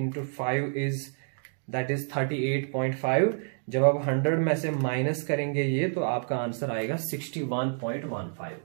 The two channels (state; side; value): silent; left; digital silence